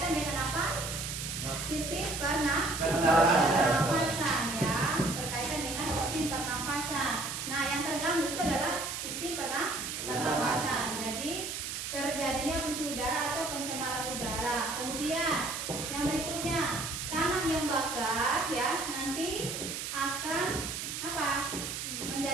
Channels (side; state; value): right; noise; hiss, 5 dB below the sound